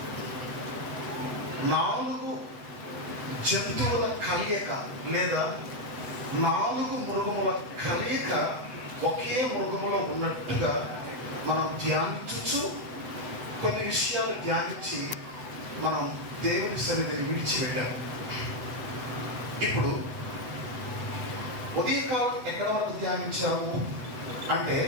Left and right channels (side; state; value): left; late; 7.9 ms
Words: 4 జంతువుల కలయిక లేదా 4 మృగముల కలయిక ఒకే మృగములో ఉన్నట్టుగా మనం ధ్యానించు కొన్ని విషయాలు ధ్యానించి మనం దేవుని సన్నిధిని విడిచిపెట్టాలి. ఇప్పుడు ఉదయకాలం ఎక్కడ వరకు ధ్యానించాము అంటే